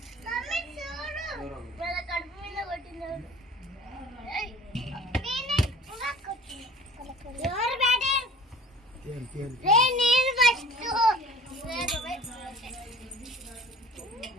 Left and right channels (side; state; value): both; normal; correlation 0.47